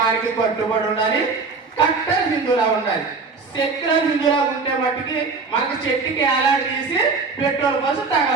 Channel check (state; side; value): quieter; left; 4.4 dB